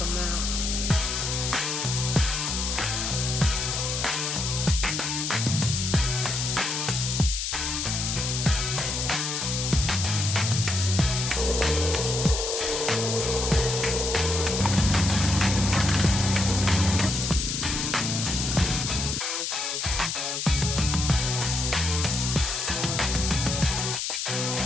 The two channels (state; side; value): noise; left; hiss, 2 dB below the sound